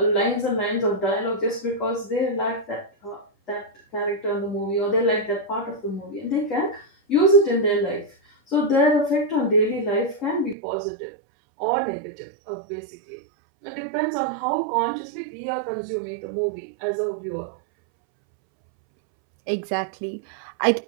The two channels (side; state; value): left; drops out; at 10.6 s